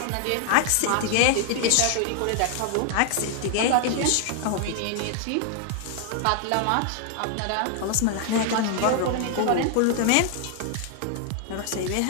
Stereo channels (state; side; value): different; both; correlation 0.00